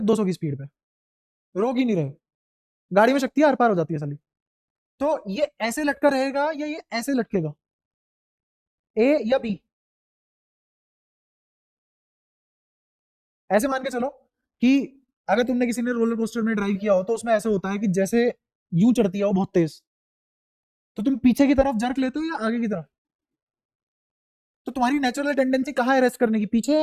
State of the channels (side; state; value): both; identical; correlation 1.00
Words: 200 की स्पीड पे, रोक ही नहीं रहे, गाड़ी में शक्ति आर पार हो जाती है साली, तो ये ऐसे लटका रहेगा या ये ऐसे लटकेगा? ए या बी? ऐसे मान के चलो कि अगर तुमने किसी ने रोलर कोस्टर में ड्राइव किया हो तो उसमें ऐसे होता है कि जैसे यूं चढ़ती है वो बहुत तेज, तो तुम पीछे की तरफ जर्क लेते हो या आगे की तरफ? तो तुम्हारी नेचुरल टेंडेंसी कहाँ है रेस्ट करने की? पीछे